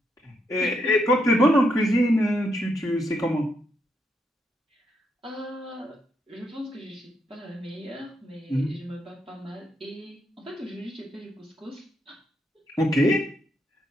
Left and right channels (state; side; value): normal; both; correlation 0.78